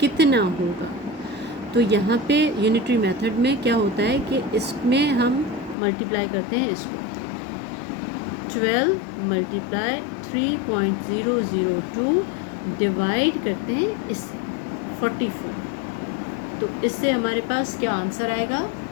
कितना होगा? तो यहाँ पे यूनिटरी मेथड में क्या होता है कि इसमें हम मल्टीप्लाई करते हैं इसको. 12 मल्टीप्लाई 3.002 डिवाइड करते हैं इससे 44. तो इससे हमारे पास क्या आंसर आएगा?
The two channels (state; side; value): drops out; right; at 5.8 s